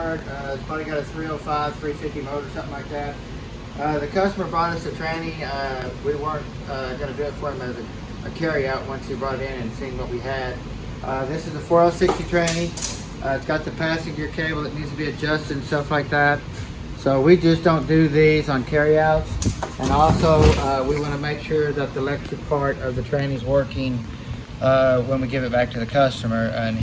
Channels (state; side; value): identical; both; correlation 1.00